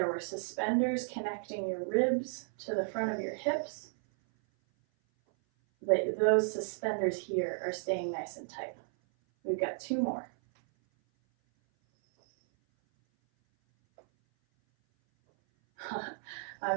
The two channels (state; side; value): silent; left; 55 dB below the other